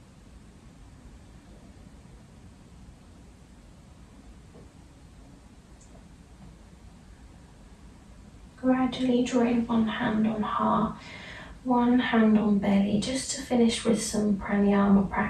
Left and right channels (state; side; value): identical; both; correlation 1.00